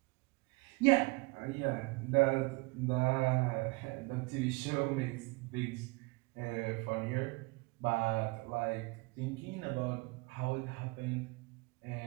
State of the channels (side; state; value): left; quieter; 25.9 dB